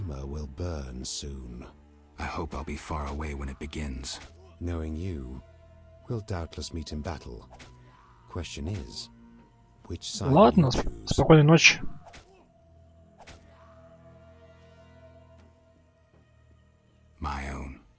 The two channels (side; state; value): both; identical; correlation 1.00